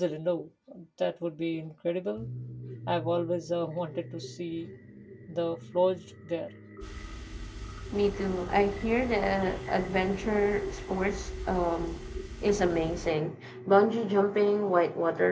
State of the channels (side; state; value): both; identical; correlation 1.00